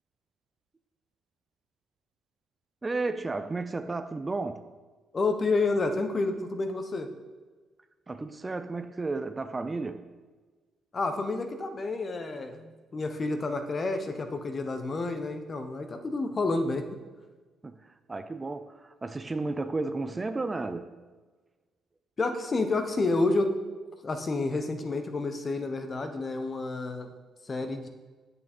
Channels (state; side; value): normal; both; correlation 0.86